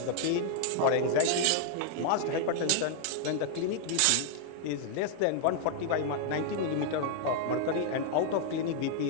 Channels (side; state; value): both; different; correlation 0.00